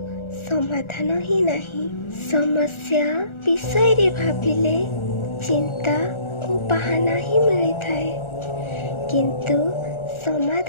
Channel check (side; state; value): right; late; 1.4 ms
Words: समाधान ही नहीं। समस्या विषय रे भाबिले चिंता और बहाना ही मिली थाए किंतु